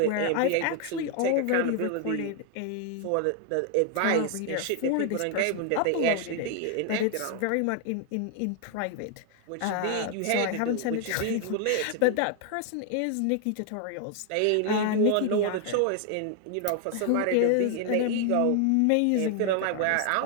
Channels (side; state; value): both; different; correlation 0.00